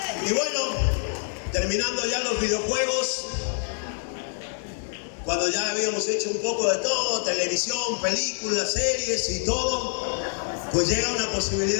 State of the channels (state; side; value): silent; right; 61 dB below the other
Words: Y bueno, terminando ya los videojuegos, cuando ya habíamos hecho un poco de todo, televisión, películas, series y todo, pues llega una